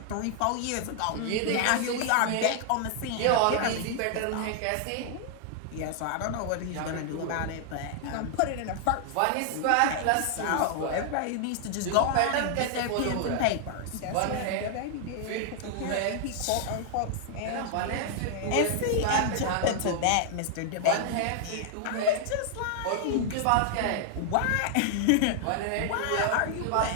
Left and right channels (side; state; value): both; different; correlation 0.00